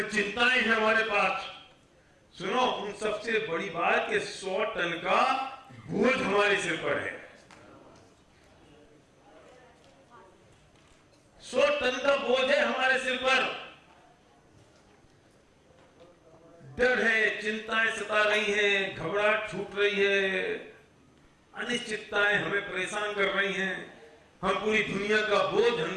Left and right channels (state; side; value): identical; both; correlation 1.00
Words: चिंताएं हैं हमारे पास। सुनो, उन सबसे बड़ी बात कि 100 टन का बोझ हमारे सिर पर है, 100 टन का बोझ है हमारे सिर पर, डर है, चिंताएं सता रही हैं, घबराहट छूट रही है, अनिश्चितताएं हमें परेशान कर रही हैं, हम पूरी दुनिया का बोझ,